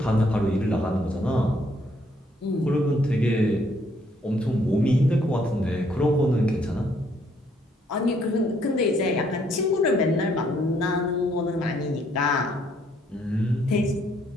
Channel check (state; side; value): normal; both; correlation 0.68